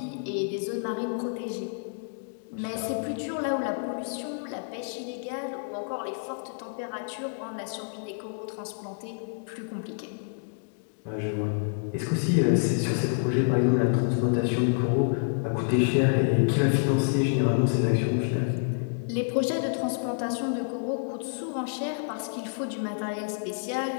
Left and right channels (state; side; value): silent; right; digital silence